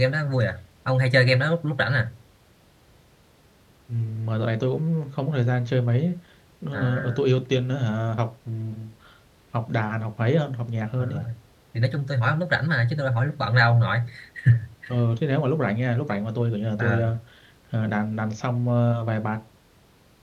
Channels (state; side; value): identical; both; correlation 1.00